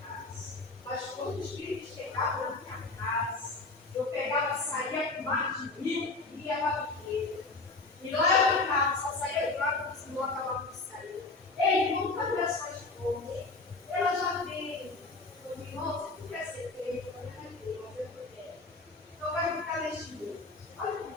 Mas quando os filhos chegavam na minha casa, eu pegava, saía com mais de 1000 e ia para a igreja. E lá eu ficava, só saía de lá quando o Senhor acabava de sair. Ei, irmão, cadê a sua esposa? Ela já veio. Eu disse, irmão, você não quer ser feito, eu não quero, mas eu não quero. Então vai ficar neste mundo. Olha como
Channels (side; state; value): right; quieter; 3.6 dB